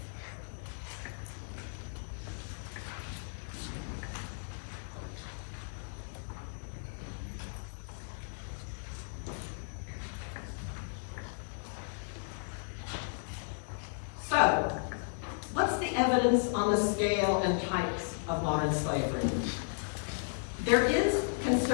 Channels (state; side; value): silent; right; digital silence